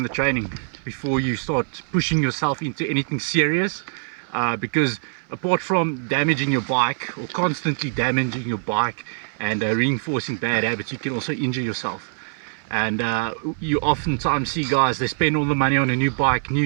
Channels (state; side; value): silent; left; 60 dB below the other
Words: training before you start pushing yourself into anything serious, because apart from damaging your bike or constantly damaging your bike and reinforcing bad habits, you can also injure yourself. And you oftentimes see guys, they spend all the money on a new bike,